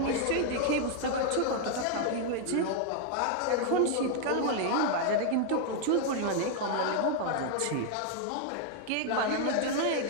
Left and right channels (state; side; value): different; both; correlation 0.00